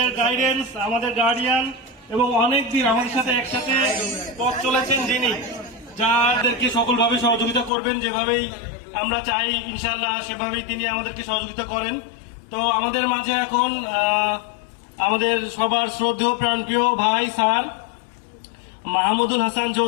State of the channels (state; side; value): drops out; right; at 7.7 s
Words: গাইডেন্স, আমাদের গার্ডিয়ান এবং অনেক দিন আমাদের সাথে একসাথে পথ চলেছেন যিনি, যাদেরকে সকলভাবে সহযোগিতা করবেন, যেভাবেই আমরা চাই ইনশাআল্লাহ সেভাবেই তিনি আমাদেরকে সহযোগিতা করেন। তো আমাদের মাঝে এখন আমাদের সবার শ্রদ্ধেয় প্রাণপ্রিয় ভাই স্যার মাহমুদুল হাসান